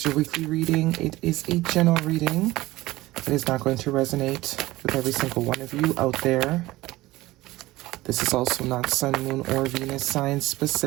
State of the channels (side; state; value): left; quieter; 18.4 dB